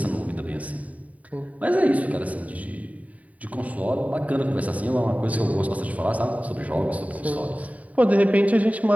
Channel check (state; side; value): late; left; 0.070 ms